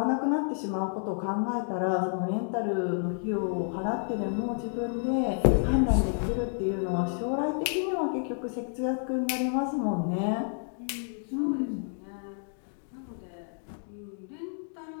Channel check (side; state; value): right; silent; 58 dB below the other